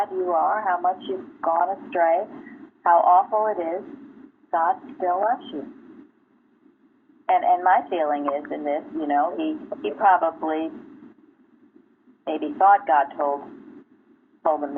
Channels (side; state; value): both; identical; correlation 1.00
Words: you are, how much you've gone astray, how awful it is, God still loves you. And my feeling is in this, you know, he probably maybe thought God told him